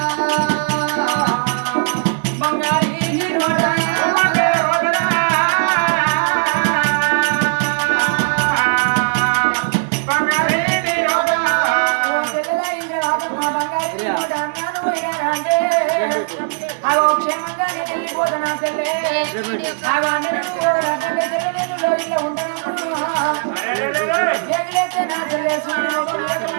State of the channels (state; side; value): silent; left; digital silence